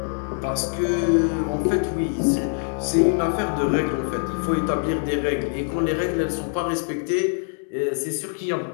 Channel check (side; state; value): right; silent; 63 dB below the other